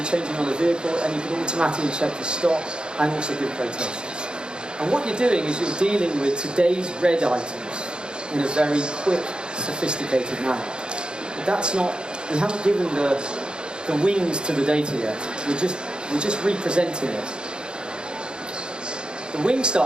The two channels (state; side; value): late; left; 0.050 ms